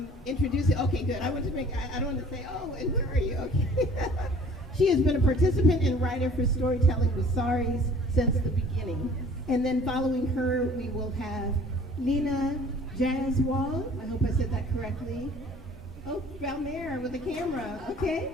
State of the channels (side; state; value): both; normal; correlation 0.50